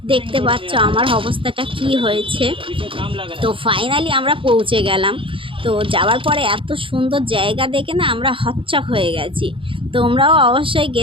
দেখতে পাচ্ছ আমার অবস্থাটা কি হয়েছে। তো ফাইনালি আমরা পৌঁছে গেলাম। তো যাওয়ার পরে এত সুন্দর জায়গা দেখে না আমরা হচ্চক হয়ে গেছি। তোমরাও অবশ্যই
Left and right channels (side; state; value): left; late; 0.25 ms